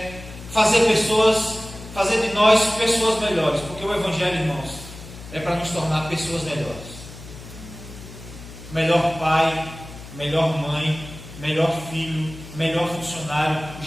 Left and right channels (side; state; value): left; noise; hum, 15 dB below the sound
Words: fazer de nós pessoas melhores, porque o Evangelho, irmãos, é para nos tornar pessoas melhores. Melhor pai, melhor mãe, melhor filho, melhor funcionário.